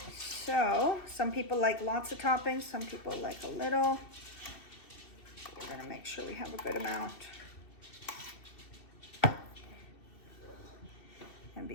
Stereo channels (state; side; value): late; right; 2.7 ms